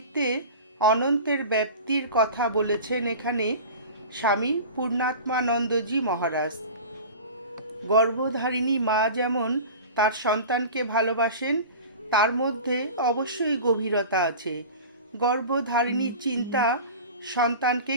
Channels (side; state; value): both; inverted; correlation -0.35